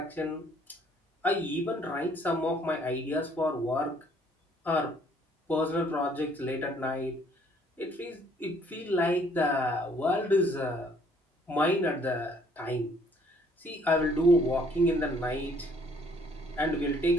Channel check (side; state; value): both; normal; correlation 0.62